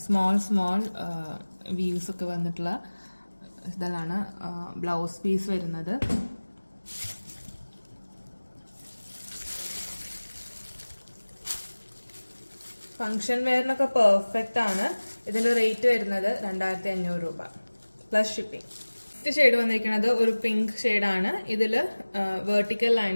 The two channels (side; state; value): both; inverted; correlation -1.00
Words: സ്മോൾ വ്യൂസ് ഒക്കെ വന്നിട്ടുള്ള ഇതിലാണ് ബ്ലൗസ് പീസ് വരുന്നത്. ഫംഗ്ഷൻ വെയറിനൊക്കെ പെർഫെക്റ്റ് ആണ്. ഇതിന്റെ റേറ്റ് വരുന്നത് 2500 രൂപ പ്ലസ് ഷിപ്പിംഗ്. ഫസ്റ്റ് ഷെയ്ഡ് വന്നിരിക്കുന്നത് ഒരു പിങ്ക് ഷെയ്ഡാണ്. ഇതില് വെർട്ടിക്കൽ